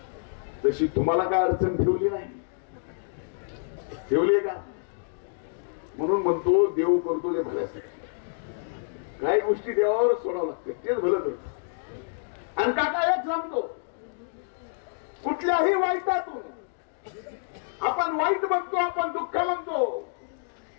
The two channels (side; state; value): right; silent; digital silence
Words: तशी तुम्हाला काय अडचण ठेवली नाही, ठेवली का? म्हणून म्हणतो देव करतो जे भल्यासाठी. काही गोष्टी देवावर सोडावं लागते, तेच भलं करतो. आणि काका एक सांगतो, कुठल्याही वाईटातून आपण वाईट म्हणतो, आपण दुःख म्हणतो,